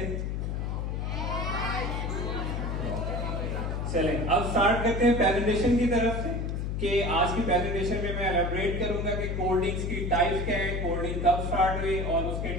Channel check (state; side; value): noise; left; hum, 2 dB below the sound